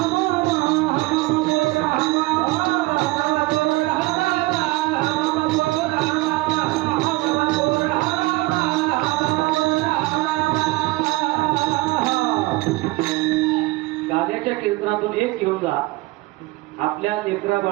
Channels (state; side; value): quieter; left; 21.2 dB